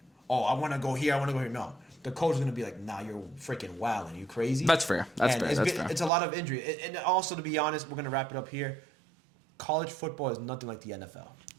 want to go here, I want to go here. No, the coach is gonna be like, nah, you're freaking wilding. You crazy? That's fair. It's a lot of injury. And also, to be honest, we're gonna wrap it up here. College football is nothing like the NFL.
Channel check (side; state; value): left; drops out; at 6.1 s